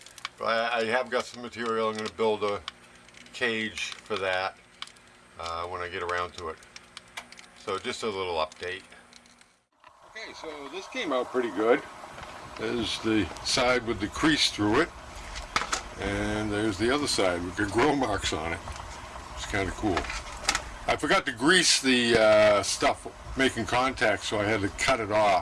But I have got some material. I'm going to build a cage for that when I get around to it. So just a little update. Okay, so this came out pretty good. There's the side with the crease through it, and there's the other side with the grill marks on it. It's kind of cool. I forgot to grease the stuff making contact, so I had to cut it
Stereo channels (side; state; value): both; identical; correlation 1.00